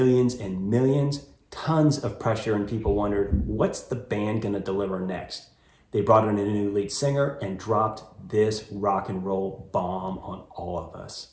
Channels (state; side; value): identical; both; correlation 1.00